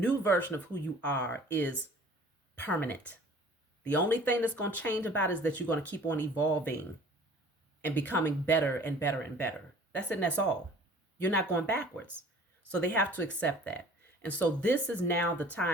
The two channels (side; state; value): both; normal; correlation 0.49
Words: version of who you are is permanent. The only thing that's going to change about it is that you're going to keep on evolving and becoming better and better and better. That's it, and that's all. You're not going backwards. So they have to accept that. And so this is now the